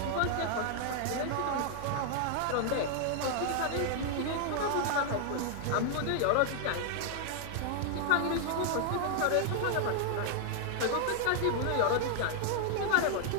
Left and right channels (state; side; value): different; both; correlation 0.00